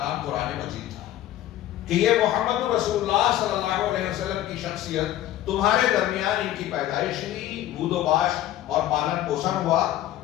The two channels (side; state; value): right; quieter; 13.4 dB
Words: قرآن مجید تھا کہ یہ محمد رسول اللہ صلی اللہ علیہ وسلم کی شخصیت تمہارے درمیان ان کی پیدائش ہوئی، بود و باش اور پالن پوشن ہوا،